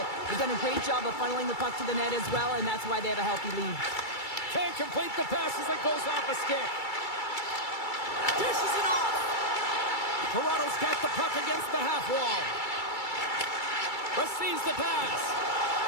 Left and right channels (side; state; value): right; late; 2.3 ms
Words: They've done a great job of funneling the puck to the net as well, and that's why they have a healthy lead. Can't complete the pass as it goes off a stick. Dishes it off. Toronto's got the puck against the half wall. Receives the pass.